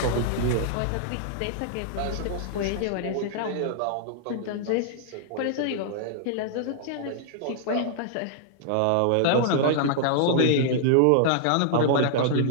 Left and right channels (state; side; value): different; both; correlation -0.01